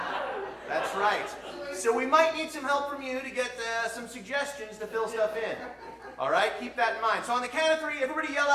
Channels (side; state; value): both; identical; correlation 1.00